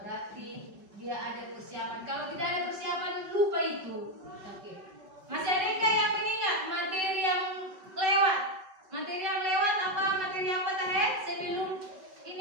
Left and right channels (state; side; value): late; left; 5.3 ms